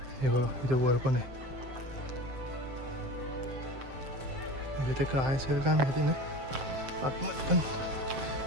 हे बघा इथे वर पण आहे. इथे काय असेल का माहिती नाही आतमध्ये पण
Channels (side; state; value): left; late; 7.6 ms